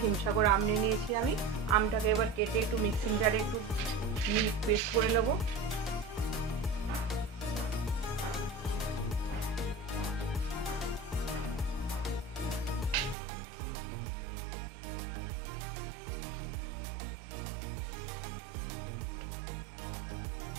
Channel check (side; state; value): left; drops out; at 13.2 s